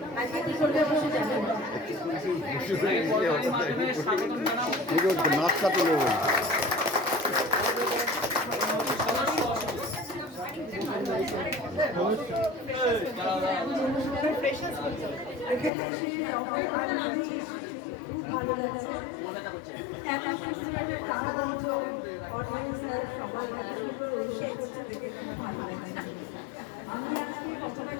আজকে কি করবে অবশ্যই জানেন। নাস্তা তুলে ভালো লাগছে। একটা সুন্দর প্রাণবন্ত অর্গানাইজার সবাই এত সুন্দর অনুষ্ঠান করছে দেখে খুব ভালো লাগছে। আমি আজকে কতটা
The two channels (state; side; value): drops out; right; at 15.7 s